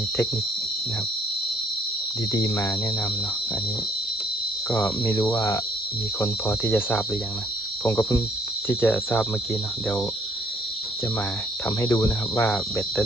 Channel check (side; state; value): both; normal; correlation 0.64